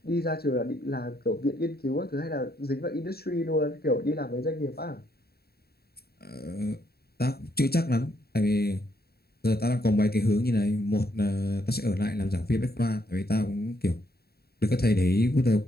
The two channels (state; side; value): late; right; 0.46 ms